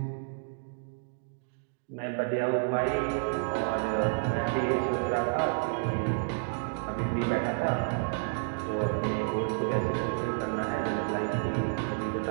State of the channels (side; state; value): left; silent; digital silence